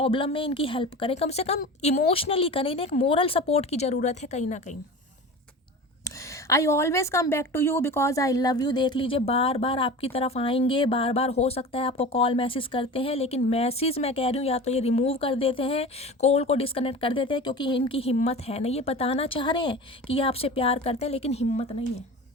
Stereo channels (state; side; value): normal; both; correlation 0.34